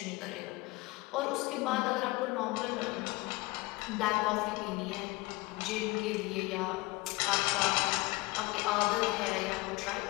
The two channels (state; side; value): quieter; right; 22.7 dB